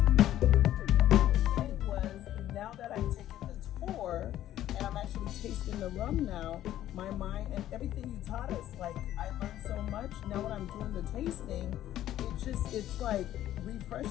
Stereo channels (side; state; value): right; quieter; 12.7 dB